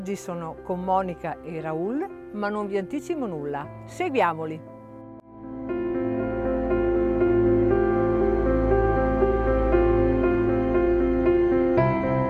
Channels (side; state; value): both; identical; correlation 1.00